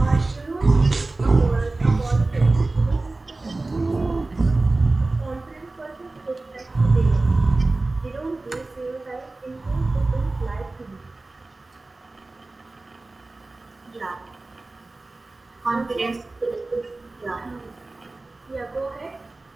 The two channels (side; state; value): left; quieter; 3.2 dB